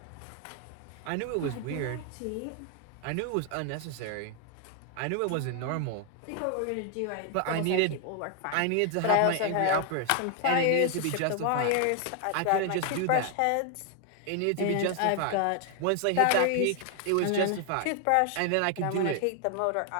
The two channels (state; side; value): different; both; correlation 0.00